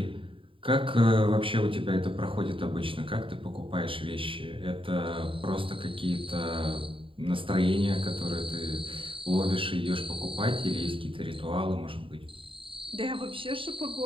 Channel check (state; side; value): late; left; 0.25 ms